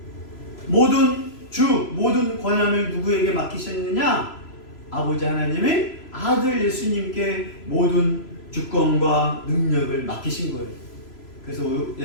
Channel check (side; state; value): right; late; 3.0 ms